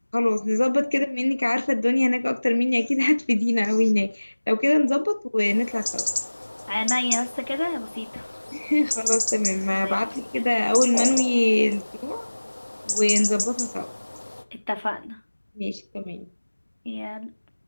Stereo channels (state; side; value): inverted; both; correlation -1.00